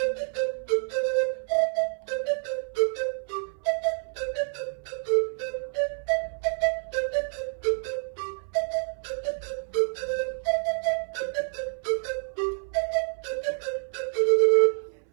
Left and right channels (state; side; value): silent; left; 59 dB below the other